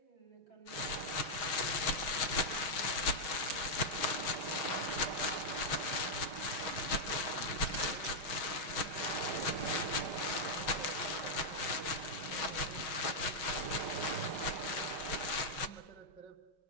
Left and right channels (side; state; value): right; late; 6.2 ms